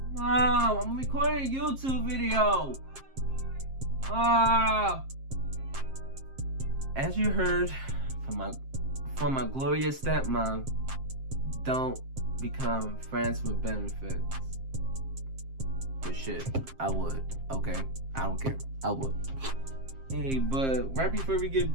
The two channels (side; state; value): left; late; 7.5 ms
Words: I'm recording a YouTube video. As you heard from my glorious stepmom, don't become friends with benefits. But shit, I would. Okay, I don't care. I would. Hey, but right before we get